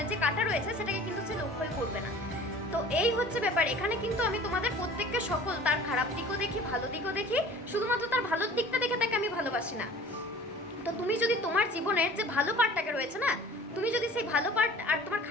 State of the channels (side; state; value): both; normal; correlation 0.45